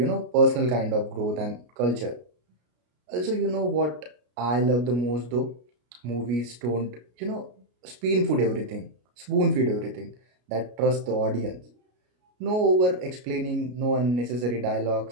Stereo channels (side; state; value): left; late; 33 ms